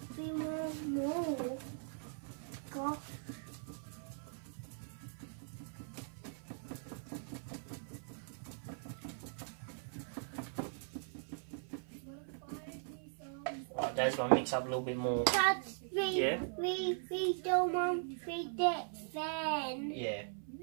want more. Gosh. Right, Dad's gonna mix up a little bit more. Dad, Yeah. we don't want that fan. Yeah.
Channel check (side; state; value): left; silent; 51 dB below the other